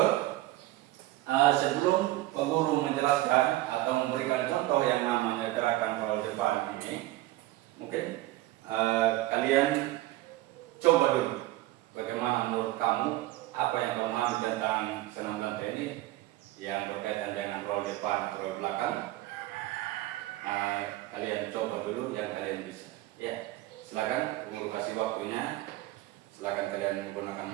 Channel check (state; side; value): quieter; left; 17.2 dB